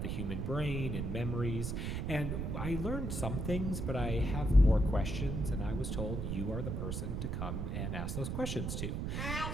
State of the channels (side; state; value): right; noise; rumble, 2 dB below the sound